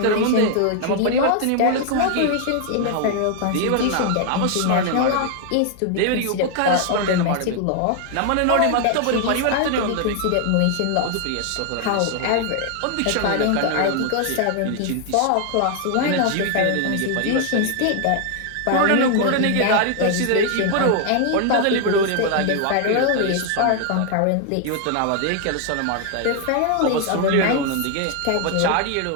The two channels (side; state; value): both; different; correlation 0.00